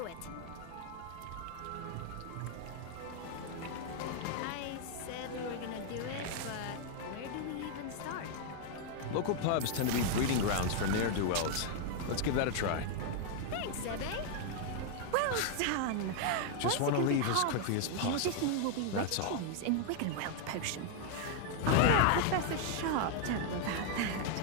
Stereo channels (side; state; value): both; different; correlation 0.00